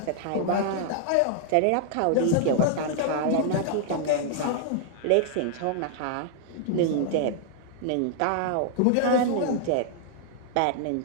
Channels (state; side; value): different; both; correlation -0.01